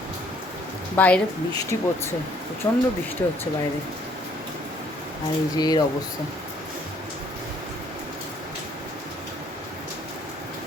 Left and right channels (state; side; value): normal; both; correlation 0.63